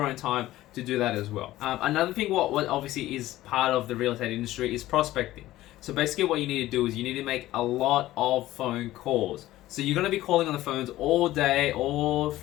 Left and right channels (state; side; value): quieter; right; 15.7 dB